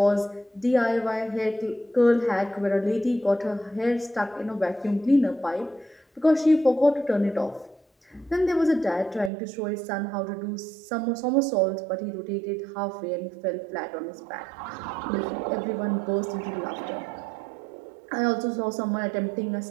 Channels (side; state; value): left; drops out; at 9.3 s